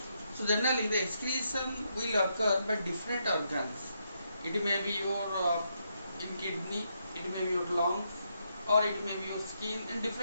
So generally the excretion will occur by different organs. It may be your in kidney, it may be your lungs, or it may be your skin, and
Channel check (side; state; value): both; inverted; correlation -0.80